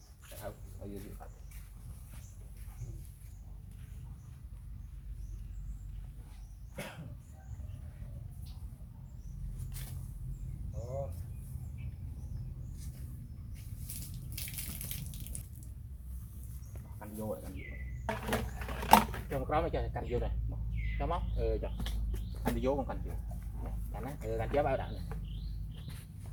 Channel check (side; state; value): both; identical; correlation 1.00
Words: không bao nhiêu canh vô rồi cho một đó mới cho canh vô này cho móc cho anh đi vô con canh vô canh á canh chế bao đạn này